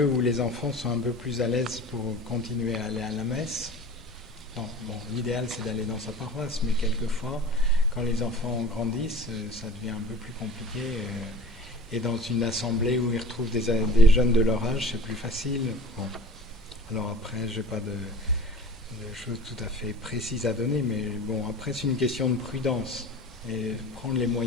où les enfants sont un peu plus à l'aise pour continuer à aller à la messe. Bon, l'idéal c'est d'aller dans sa paroisse, mais quelquefois quand les enfants grandissent, ça devient un peu plus compliqué. Et dans une assemblée où ils retrouvent des jeunes de leur âge, c'est plus facile. Bon. Alors après, je n'ai pas de choses tout à fait précises à donner, mais bon, après c'est une question de prudence. Et prendre les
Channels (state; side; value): normal; both; correlation 0.41